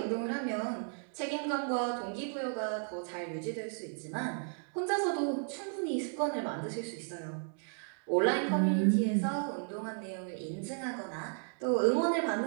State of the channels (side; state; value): left; silent; 55 dB below the other